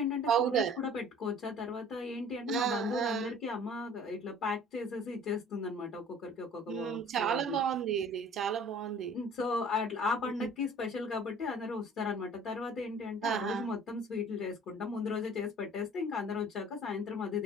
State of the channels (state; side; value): normal; both; correlation 0.49